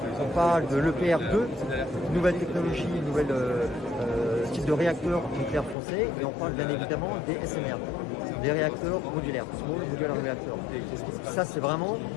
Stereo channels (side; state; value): right; drops out; at 5.8 s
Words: on parle de l'EPR2, nouvelle technologie, nouvel type de réacteur nucléaire français, et on parle bien évidemment des SMR, des réacteurs modulaires, Small Modular Reactor. Ça, c'est vraiment